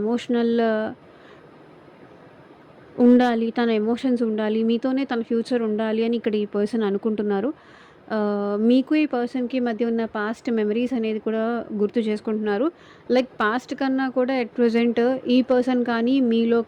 ఎమోషనల్ ఉండాలి, తన ఎమోషన్స్ ఉండాలి, మీతోనే తన ఫ్యూచర్ ఉండాలి అని ఇక్కడ ఈ పర్సన్ అనుకుంటున్నారు. మీకు ఈ పర్సన్‌కి మధ్య ఉన్న పాస్ట్ మెమరీస్ అనేది కూడా గుర్తు చేసుకుంటున్నారు. లైక్ పాస్ట్ కన్నా కూడా ఎట్ ప్రెజెంట్ ఈ పర్సన్ కానీ, మీలో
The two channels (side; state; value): both; identical; correlation 1.00